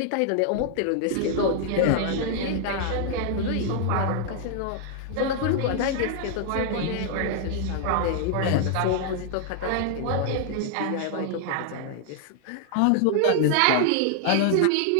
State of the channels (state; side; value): different; both; correlation 0.00